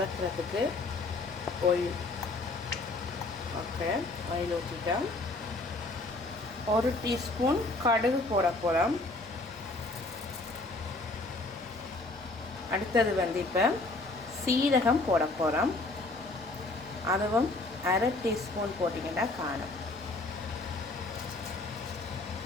ஆயில். ஓகே, ஆயில் ஊற்றிட்டோம். 1 டீஸ்பூன் கடுகு போட போகிறோம். அடுத்தது இப்போ சீரகம் போட போகிறோம். அதுவும் 1/2 டீஸ்பூன் போட்டிங்கன்னா காணும்.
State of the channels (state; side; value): quieter; right; 3.1 dB